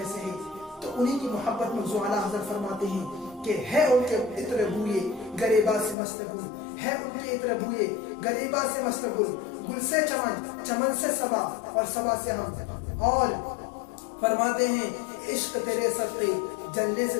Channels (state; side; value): drops out; right; at 6.0 s